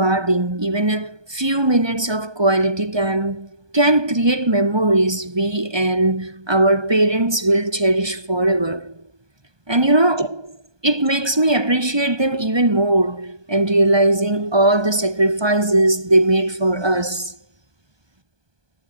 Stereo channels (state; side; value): late; left; 1.2 ms